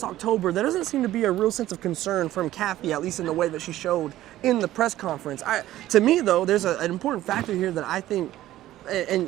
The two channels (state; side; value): quieter; left; 14.5 dB